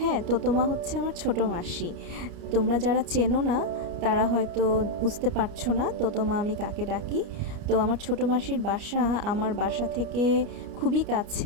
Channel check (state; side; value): late; left; 29 ms